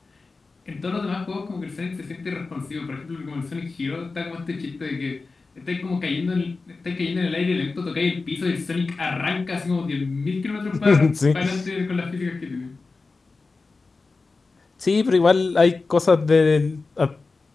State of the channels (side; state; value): right; quieter; 3.9 dB